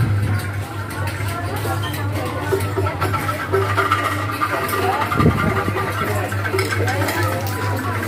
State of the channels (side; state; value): both; identical; correlation 1.00